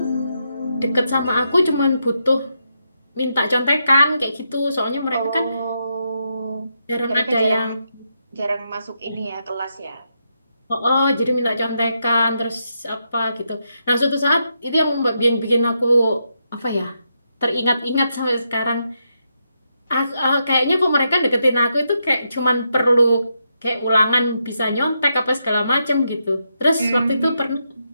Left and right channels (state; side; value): inverted; both; correlation -0.82